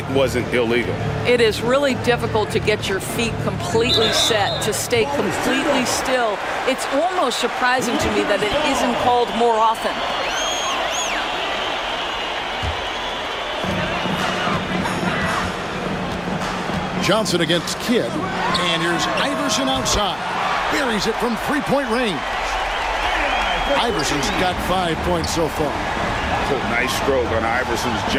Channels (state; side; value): identical; both; correlation 1.00